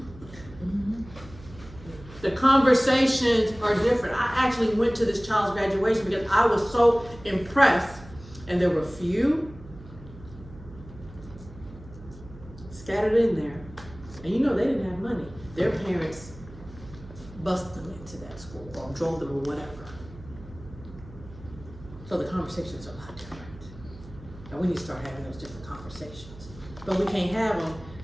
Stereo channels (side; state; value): right; noise; hum, 17 dB below the sound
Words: The conversations are different. I actually went to this child's graduation because I was so impressed, and there were few scattered in there. And you know they didn't have money. Their parents busted them into that school or drove them or whatever. So the conversations are a lot different. And we need to start having those different conversations. But we can't have them